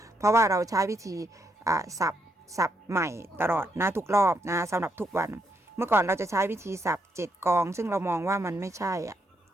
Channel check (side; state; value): both; normal; correlation 0.77